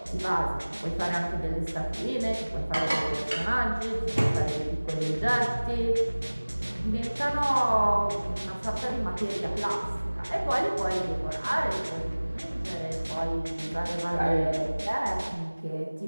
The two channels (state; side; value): inverted; both; correlation -1.00